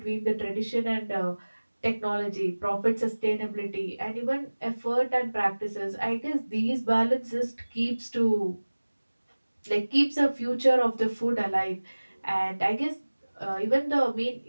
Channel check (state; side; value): inverted; both; correlation -1.00